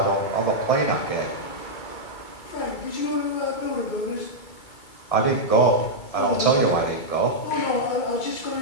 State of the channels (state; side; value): late; right; 2.3 ms